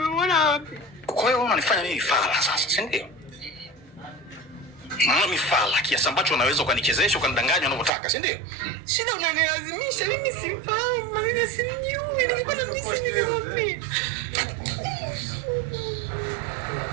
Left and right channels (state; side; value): drops out; left; at 7.9 s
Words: wapi? Kwa hiyo unanifanya mimi fala sasa, si ndio? Mimi fala kiasi ambacho unaweza ukanichezesha ukanidanganya unavyotaka, si ndio? Shida unanilazimisha, mimi simfahamu, mimi simjui. Ningekuwa na mjisi ningemwambia.